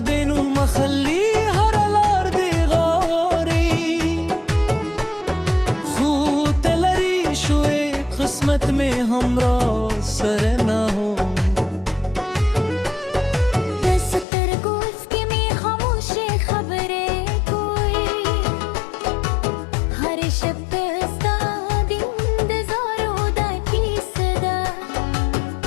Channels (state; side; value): drops out; right; at 14.2 s